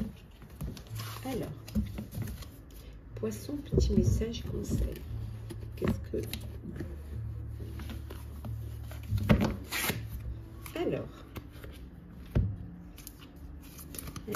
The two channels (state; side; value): identical; both; correlation 1.00